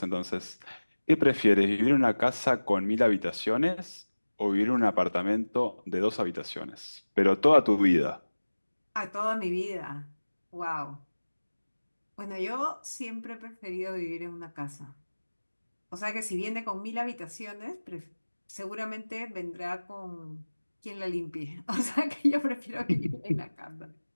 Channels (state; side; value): inverted; both; correlation -1.00